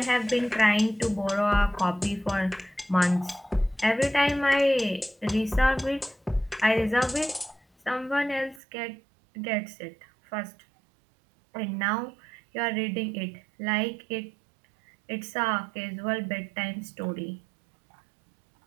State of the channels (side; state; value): left; drops out; at 8.6 s